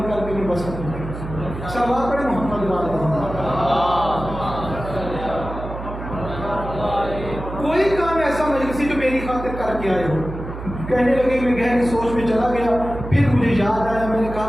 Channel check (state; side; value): noise; right; hum, 9 dB below the sound